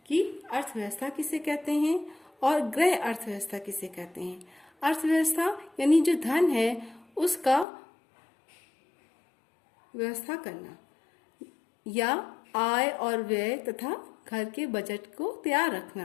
कि अर्थव्यवस्था किसे कहते हैं और गृह अर्थव्यवस्था किसे कहते हैं। अर्थव्यवस्था यानी जो धन है उसका व्यवस्था करना या आय और व्यय तथा घर के बजट को तैयार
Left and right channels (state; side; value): drops out; right; at 7.7 s